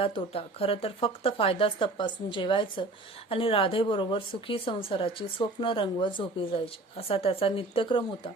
तोटा, खरं तर फक्त फायदाच तपासून जेवायचं आणि राधेबरोबर सुखी संसाराची स्वप्न रंगवत झोपी जायची असा त्याचा नित्यक्रम होता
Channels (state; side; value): quieter; left; 3.1 dB